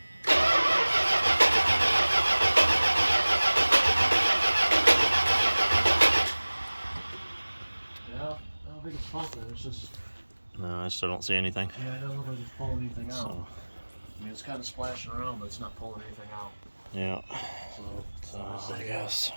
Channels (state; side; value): inverted; both; correlation -1.00